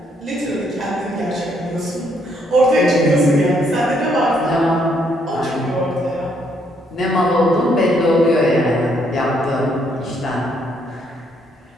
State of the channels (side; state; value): both; normal; correlation 0.71